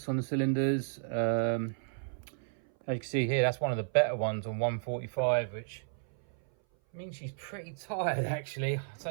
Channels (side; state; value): left; silent; 56 dB below the other